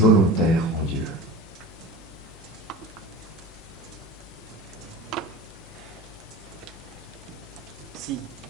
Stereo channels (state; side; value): normal; both; correlation 0.34